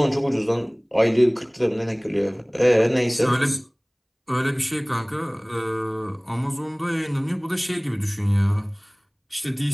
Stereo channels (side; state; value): both; identical; correlation 1.00